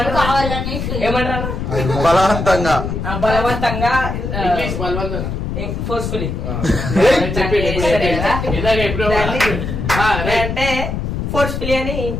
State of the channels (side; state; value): left; noise; rumble, 3 dB below the sound